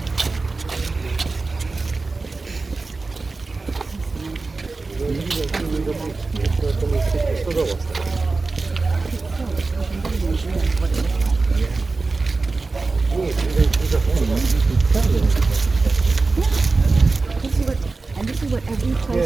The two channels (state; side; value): quieter; left; 3.8 dB